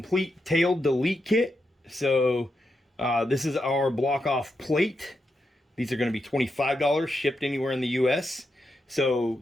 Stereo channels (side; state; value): both; normal; correlation 0.85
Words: tail delete kit. So this is our block off plate. These are going to be $25 shipped anywhere in the US. So